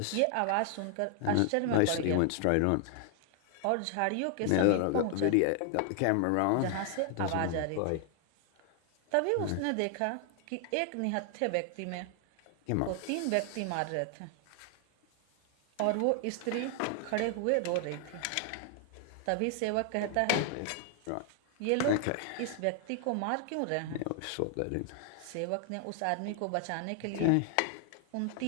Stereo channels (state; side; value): different; both; correlation 0.00